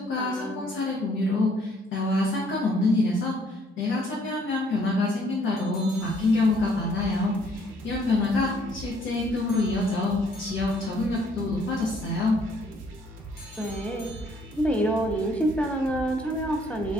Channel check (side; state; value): both; normal; correlation 0.64